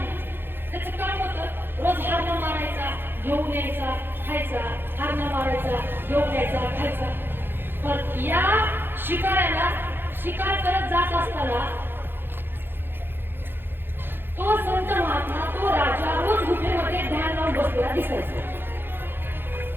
त्याचं काम होतं रोज हारणं मारायचा, घेऊन यायचा, खायचा, हारणं मारायचा, घेऊन यायचा, खायचा. पण या शिकाऱ्याला शिकार करत जात असताना तो संत महात्मा, तो राजा रोज गुफेमध्ये ध्यान लावून बसलेला दिसायचा.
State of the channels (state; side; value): late; left; 0.10 ms